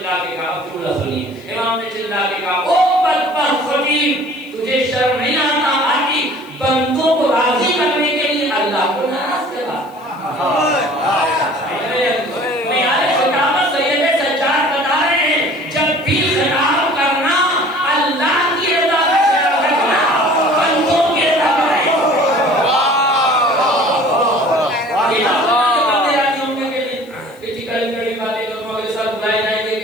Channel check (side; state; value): left; noise; hiss, 28 dB below the sound